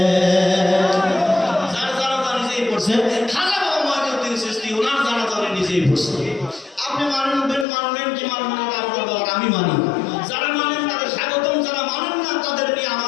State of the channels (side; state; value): right; drops out; at 7.7 s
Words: যার জানাজা নিজেই পড়ছে। খাজা বাবা মঈনুদ্দিন চিশতি ওনার জানাজা উনি নিজেই পড়ছে। আপনি মানবেন কি মানবেন না আপনার ব্যাপার, আমি মানি। যারা মানেন তাদের স্বাগতম, যারা মানেন না তাদের নিয়ে